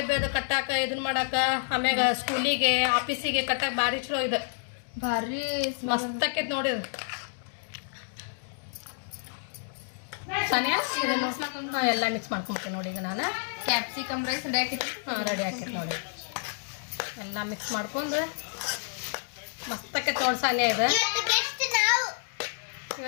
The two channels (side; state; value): right; silent; digital silence